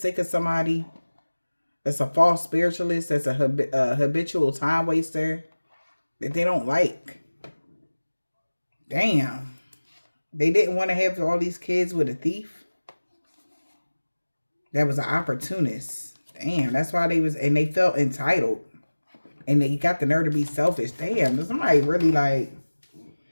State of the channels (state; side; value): inverted; both; correlation -1.00